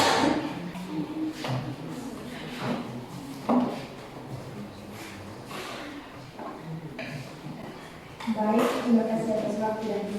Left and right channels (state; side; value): identical; both; correlation 1.00